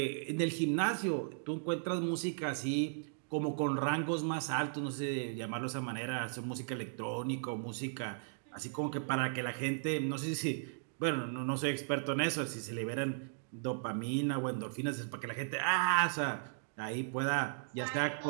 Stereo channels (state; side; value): silent; left; digital silence